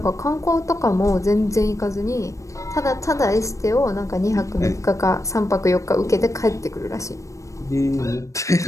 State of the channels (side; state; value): right; late; 0.15 ms